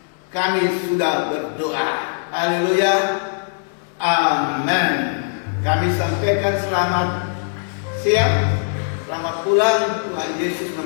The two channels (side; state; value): right; silent; digital silence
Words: Kami sudah berdoa. Haleluya. Amin. Kami sampaikan selamat siang, selamat pulang. Tuhan Yesus